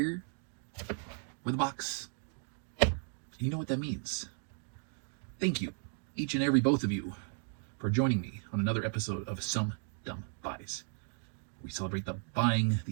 with a box. You know what that means. Thank you, each and every both of you, for joining me on another episode of Some Dumb Buys. We celebrate the buying,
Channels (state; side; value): silent; left; 54 dB below the other